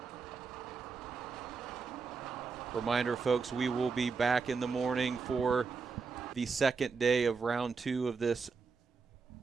Reminder, folks, we will be back in the morning for the second day of round 2 of this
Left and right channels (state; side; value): quieter; left; 4.9 dB